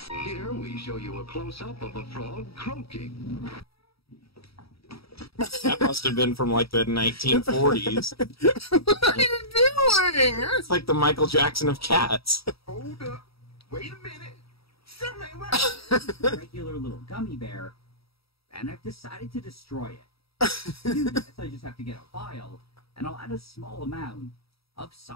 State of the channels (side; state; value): right; late; 0.76 ms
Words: Here we show you a close-up of a frog croaking. That must have been from like the 1940s. What are you doing? It's like the Michael Jackson of cats. Hold up. Wait a minute. Something ain't right. Regular little gummy bear, and I've decided to destroy it. To do this, I just have to get a vial, and I'll add a small amount of